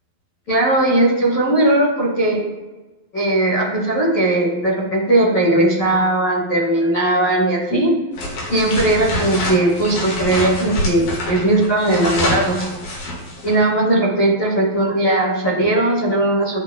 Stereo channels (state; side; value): late; right; 12 ms